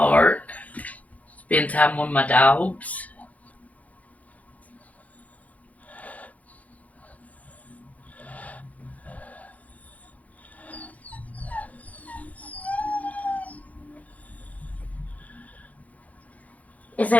Spend time with my dogs. Is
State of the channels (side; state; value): right; late; 0.072 ms